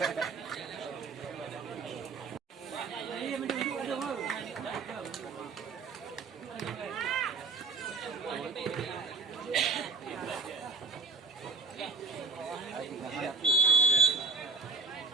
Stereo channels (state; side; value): quieter; left; 4.3 dB